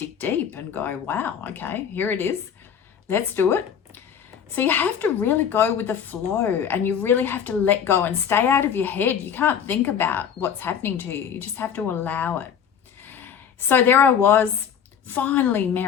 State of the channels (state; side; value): quieter; right; 8.0 dB